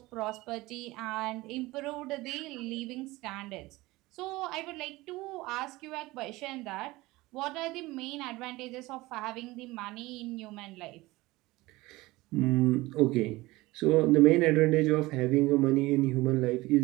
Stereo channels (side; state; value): left; quieter; 20.1 dB